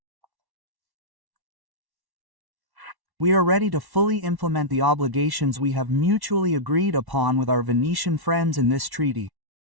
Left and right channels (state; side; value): late; left; 1.1 ms